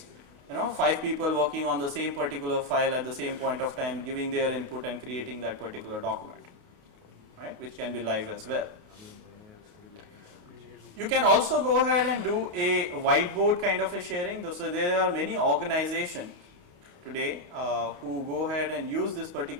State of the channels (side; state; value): left; late; 28 ms